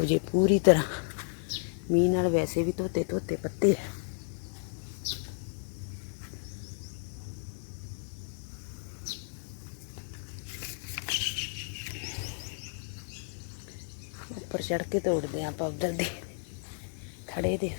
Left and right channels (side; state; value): right; silent; 56 dB below the other